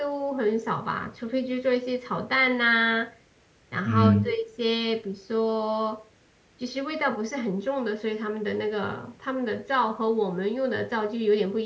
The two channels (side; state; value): both; identical; correlation 1.00